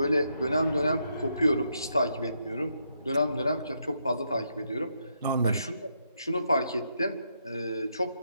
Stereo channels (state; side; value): inverted; both; correlation -0.78